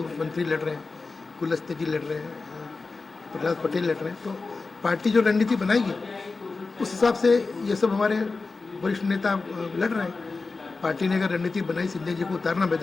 मंत्री लड़ रहे हैं, कुलस्ते जी लड़ रहे हैं, प्रहलाद पटेल लड़ रहे हैं। तो पार्टी जो रणनीति बनाएगी उस हिसाब से ये सब हमारे वरिष्ठ नेता लड़ रहे हैं। पार्टी ने अगर रणनीति बनाई सिंधिया जी को उतारना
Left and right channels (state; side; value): quieter; right; 4.0 dB